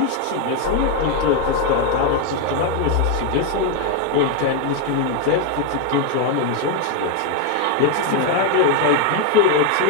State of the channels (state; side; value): different; both; correlation 0.01